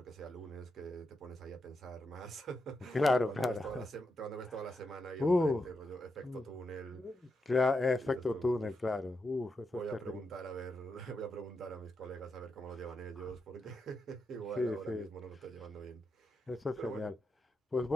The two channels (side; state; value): both; normal; correlation 0.85